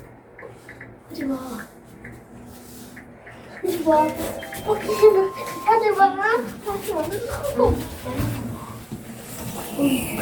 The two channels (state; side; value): identical; both; correlation 1.00